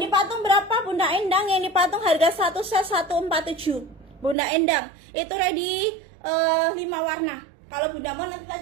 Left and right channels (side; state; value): left; drops out; at 4.4 s